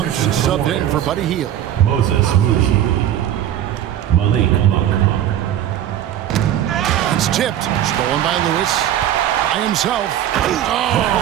subbed in for Buddy Hield. Moses Moody. Malik Monk. It's tipped. Stolen by Lewis. By himself.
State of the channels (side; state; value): left; quieter; 11.3 dB